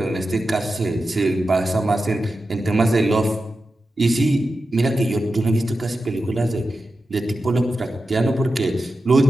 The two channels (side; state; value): both; normal; correlation 0.91